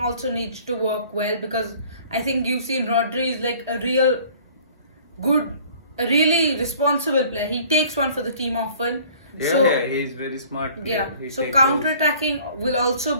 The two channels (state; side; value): inverted; both; correlation -0.52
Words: needs to work well, because I think you've seen Rodri is like a really responsible player. He takes one for the team often. Yeah, he's very smart player. Yeah, so counter-attacking will also